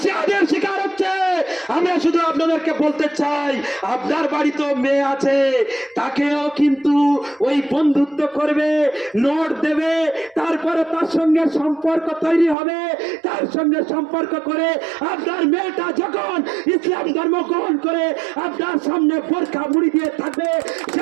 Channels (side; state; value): left; drops out; at 12.6 s